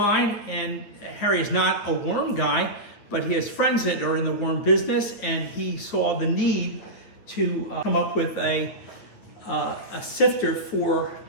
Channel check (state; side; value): late; right; 9.2 ms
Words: and Harry is not a worm guy, but he has friends that are in the worm business, and he saw the need to come up with a sifter for